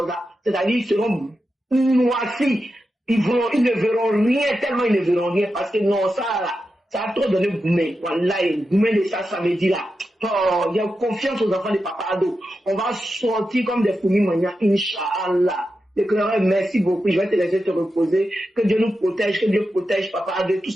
là. C'est-à-dire ils seront noircis. Ils ne verront rien, tellement ils ne verront rien. Parce que non, ça là, ça a trop donné Goumé. Voilà, Goumé de ça samedi là. Oh, il y a confiance aux enfants de Papa Ado. On va sortir comme des fourmis manières, Inch'Allah. L'éclaireur, merci beaucoup. Je vais te laisser te reposer. Que Dieu nous protège, que Dieu protège Papa Ado, tous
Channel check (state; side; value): normal; both; correlation 0.89